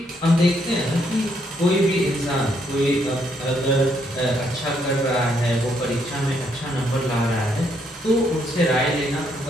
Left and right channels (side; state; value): both; normal; correlation 0.73